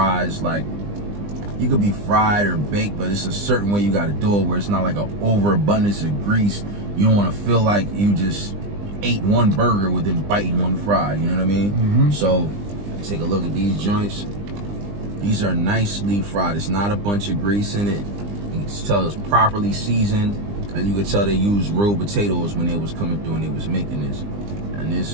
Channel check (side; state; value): left; late; 20 ms